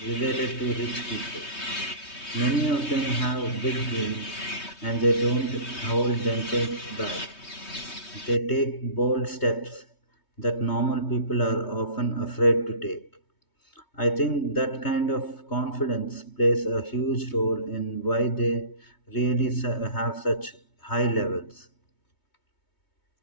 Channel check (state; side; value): late; right; 3.2 ms